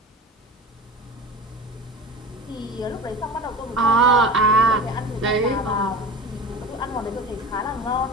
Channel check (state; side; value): normal; both; correlation 0.33